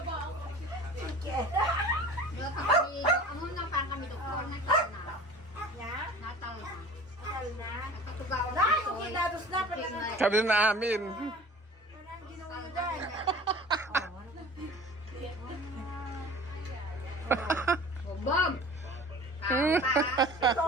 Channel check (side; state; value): both; normal; correlation 0.42